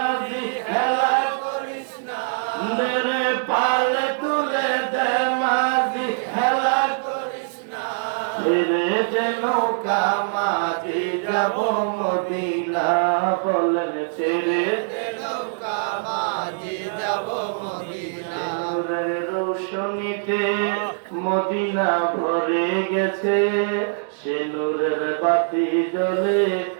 খেলা করিস না, পাল তুলে দে মাঝি খেলা করিস না, ছেড়ে দে নৌকা মাঝি যাব মদিনা, বলেন ছেড়ে দে নৌকা মাঝি যাব মদিনা, নূরের রোশনীতে মদিনা ভরে গেছে, সে নূরের বাতি জ্বলে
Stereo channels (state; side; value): silent; left; digital silence